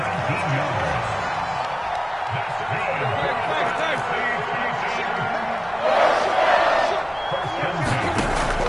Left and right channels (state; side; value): identical; both; correlation 1.00